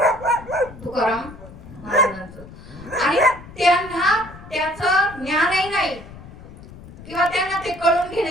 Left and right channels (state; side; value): noise; left; rumble, 17 dB below the sound